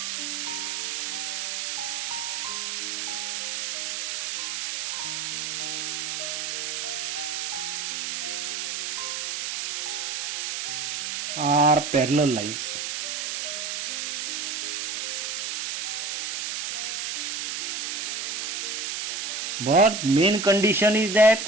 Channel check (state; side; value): noise; right; hiss, 2 dB below the sound